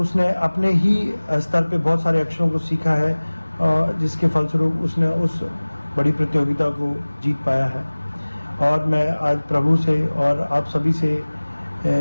अपने ही स्तर पे बहुत सारे अक्षरों को सीखा है और जिसके फलस्वरूप उसने उस बड़ी प्रतियोगिता को जीत पाया है। और मैं आज प्रभु से और आप सभी से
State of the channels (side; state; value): both; inverted; correlation -1.00